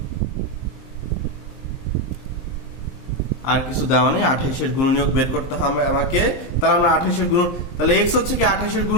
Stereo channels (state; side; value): late; right; 23 ms